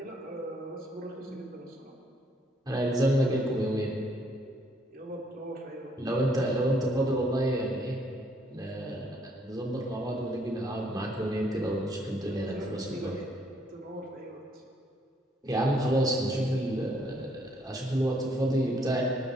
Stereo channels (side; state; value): both; normal; correlation 0.68